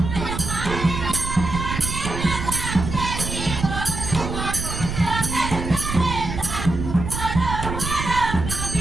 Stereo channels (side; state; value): right; noise; rumble, 5 dB below the sound